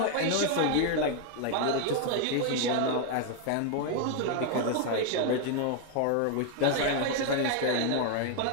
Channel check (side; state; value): both; different; correlation 0.00